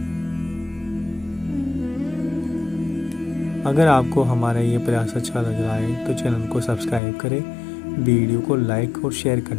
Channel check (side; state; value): right; drops out; at 7.0 s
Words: अगर आपको हमारा ये प्रयास अच्छा लग रहा है तो चैनल को सब्सक्राइब करें, वीडियो को लाइक और शेयर